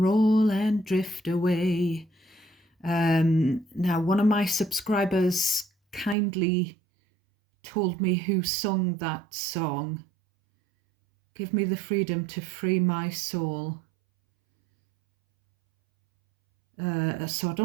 roll and drift away. Now, one of my subscribers kindly told me who sung that song. Give me the freedom to free my soul. So I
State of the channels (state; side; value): drops out; left; at 6.2 s